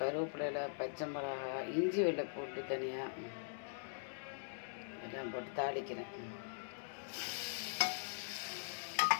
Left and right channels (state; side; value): silent; right; digital silence